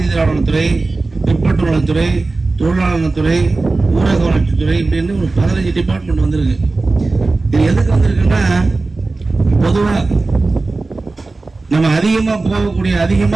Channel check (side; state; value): left; quieter; 3.5 dB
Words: பிற்பட்டு நலத்துறை, தொழிலாளர் நலத்துறை, ஊரக வளர்ச்சித்துறை, இப்படின்னு ஒரு 15 டிபார்ட்மெண்ட் வந்திருக்கு. இது எதுக்கு வந்திருக்குன்னா, பொதுவாக நம்ம